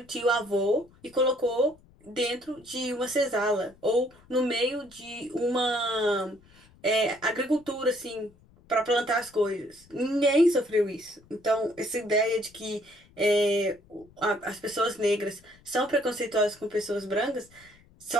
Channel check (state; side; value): noise; left; rumble, 28 dB below the sound